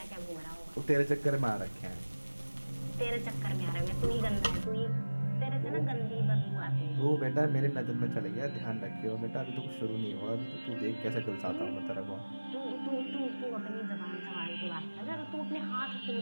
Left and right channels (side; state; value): both; inverted; correlation -1.00